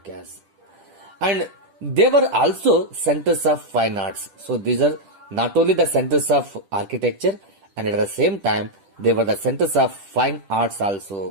And they were also centers of fine arts. So these are not only the centers of architecture, and at the same time they were the centers of fine arts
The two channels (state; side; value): late; left; 10 ms